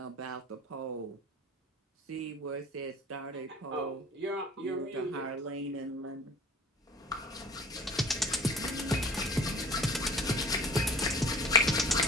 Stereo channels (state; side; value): normal; both; correlation 0.46